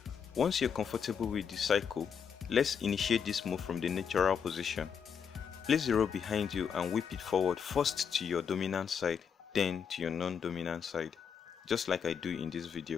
Once you're comfortable with the cycle, let's initiate this move from the natural position. Place the rope behind you and whip it forward, first to your dominant side, then to your non-dominant side, just like I do in this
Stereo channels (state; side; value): quieter; right; 7.1 dB